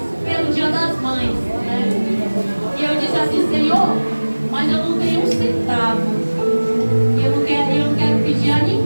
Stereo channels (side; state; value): both; inverted; correlation -1.00